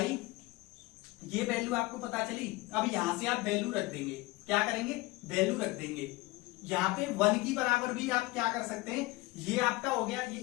ये वैल्यू आपको पता चली, अब यहां से आप वैल्यू रख देंगे, क्या करेंगे, वैल्यू रख देंगे। यहाँ पे 1 की बराबर भी आप क्या कर सकते हैं, ये आपका हो गया, ये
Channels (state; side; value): quieter; right; 21.7 dB